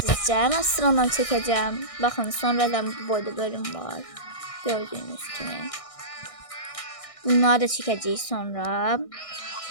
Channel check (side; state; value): right; late; 1.6 ms